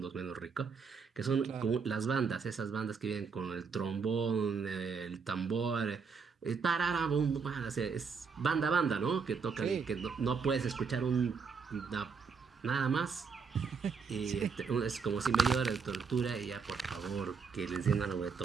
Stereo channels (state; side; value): quieter; left; 5.5 dB